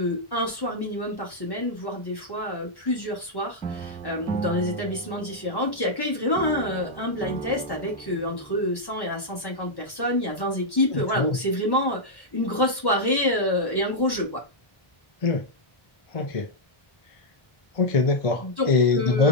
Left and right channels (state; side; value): late; right; 1.1 ms